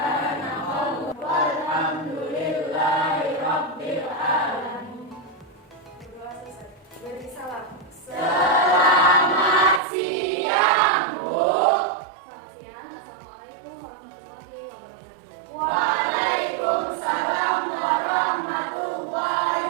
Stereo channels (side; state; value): left; drops out; at 9.8 s